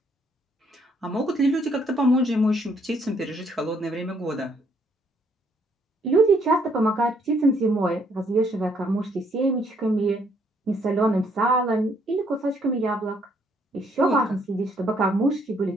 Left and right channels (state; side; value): normal; both; correlation 0.68